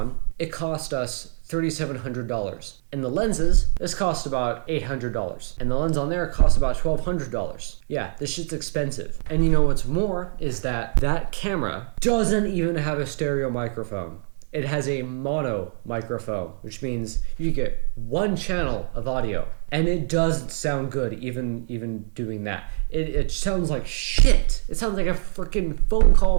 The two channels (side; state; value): left; silent; digital silence